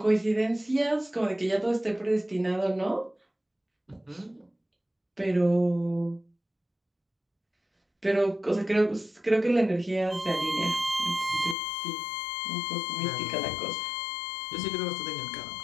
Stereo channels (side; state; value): right; drops out; at 11.6 s